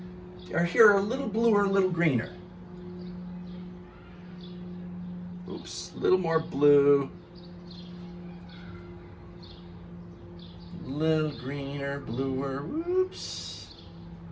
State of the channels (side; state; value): both; identical; correlation 1.00